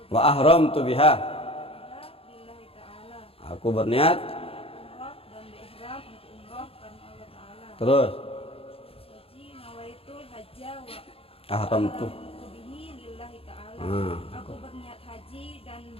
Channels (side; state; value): right; late; 0.27 ms